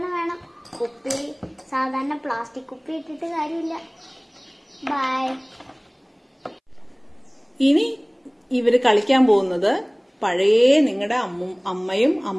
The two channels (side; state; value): both; identical; correlation 1.00